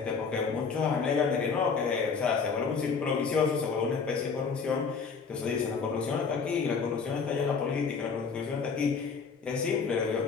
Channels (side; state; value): right; quieter; 5.4 dB